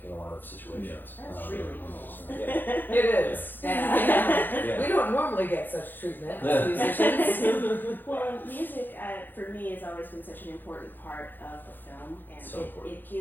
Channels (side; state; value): right; late; 0.093 ms